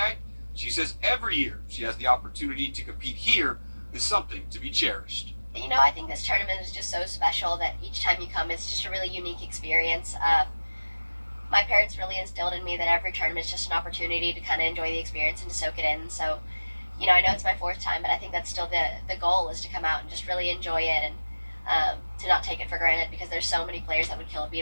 she says every year she has the opportunity to compete here is something to be cherished. You know, I think this tournament is just so special that each time you come, it's just a really unique experience. My parents really instilled in me that every tournament is just an opportunity to kind of enjoy the experience and to soak it in. So, you know, I know it's my 4th time, but I think that's still the goal, is to come out and just really enjoy it and to not take it for granted, because there's so many players that would kill to be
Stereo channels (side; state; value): both; inverted; correlation -1.00